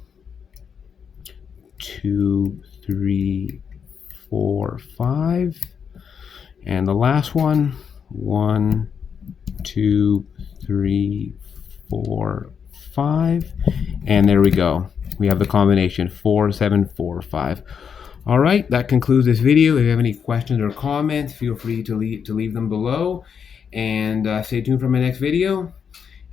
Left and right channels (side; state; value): right; quieter; 7.0 dB